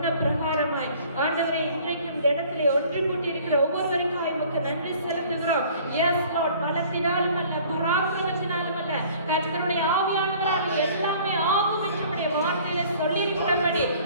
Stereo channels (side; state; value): both; inverted; correlation -0.52